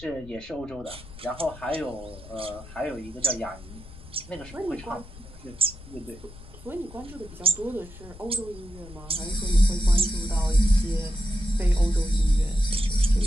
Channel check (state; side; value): noise; left; rumble, 18 dB below the sound